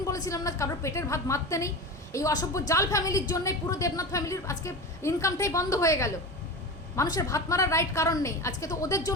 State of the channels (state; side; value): normal; both; correlation 0.27